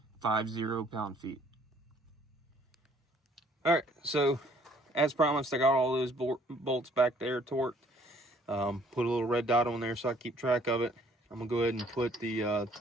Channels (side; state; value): both; normal; correlation 0.60